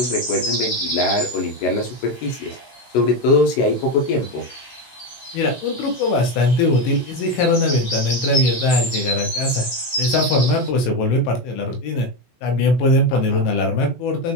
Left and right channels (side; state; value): right; late; 16 ms